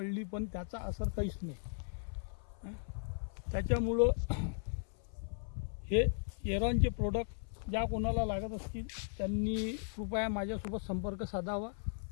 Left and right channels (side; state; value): right; silent; 53 dB below the other